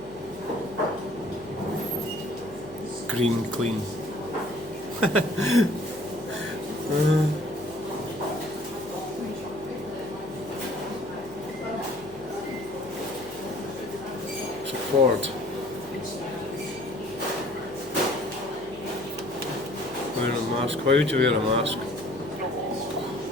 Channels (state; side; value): noise; left; hum, 23 dB below the sound